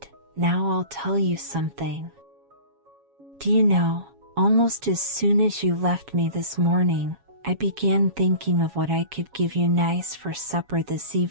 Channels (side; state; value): left; late; 7.2 ms